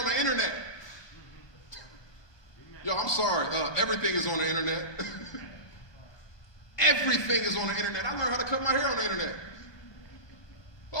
the internet. Yo, I'm sorry, everything is on the internet. Everything is on the internet. I learned how to cut my hair on the internet.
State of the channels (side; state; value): right; late; 1.2 ms